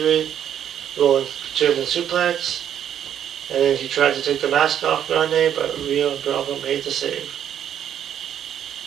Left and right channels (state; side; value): quieter; left; 9.7 dB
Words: rolling German suplex. And then he tried to take the mask off Grande, but Rio and Bravo made the save.